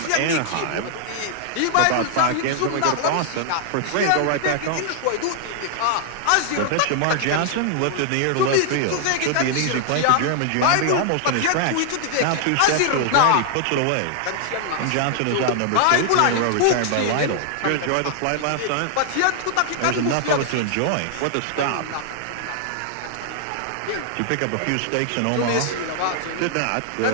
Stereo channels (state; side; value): different; both; correlation 0.00